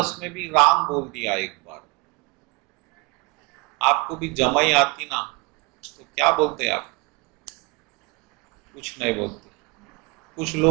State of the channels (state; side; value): quieter; left; 25.4 dB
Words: में भी राम बोल दिया एक बार। आपको भी जमाई आती ना, तो क्या बोलते आप? कुछ नहीं बोलते। कुछ